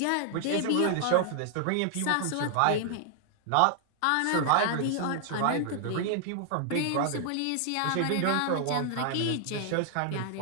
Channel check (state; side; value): different; both; correlation 0.00